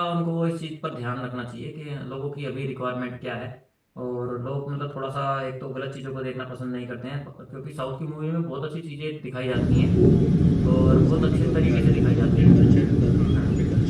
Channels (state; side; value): identical; both; correlation 1.00